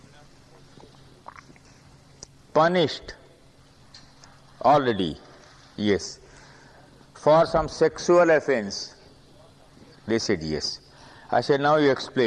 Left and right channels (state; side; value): identical; both; correlation 1.00